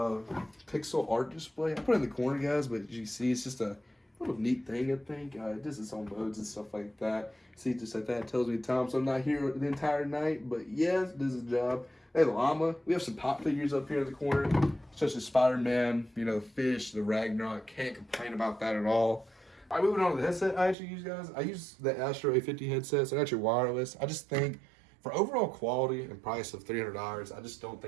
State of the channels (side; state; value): left; drops out; at 20.8 s